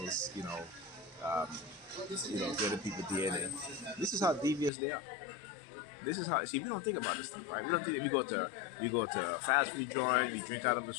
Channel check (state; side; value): drops out; right; at 4.7 s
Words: Getting people DNA. This is how devious they are. This is how. See, we don't think about this stuff, right? We don't think. You go to a fast food joint. You drink out of the